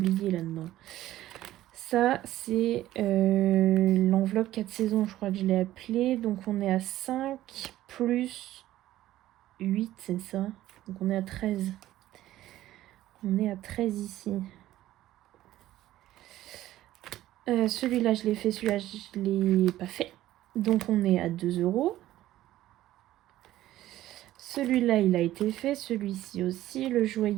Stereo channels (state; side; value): quieter; left; 14.4 dB